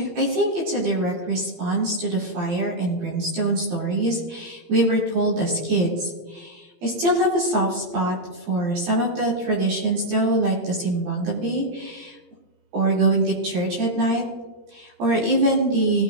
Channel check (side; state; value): left; late; 17 ms